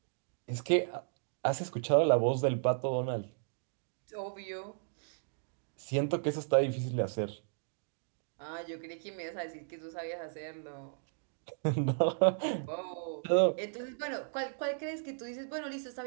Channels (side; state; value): left; silent; digital silence